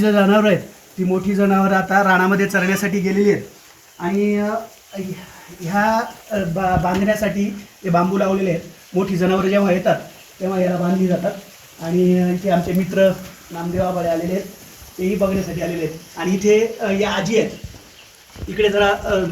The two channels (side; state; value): both; identical; correlation 1.00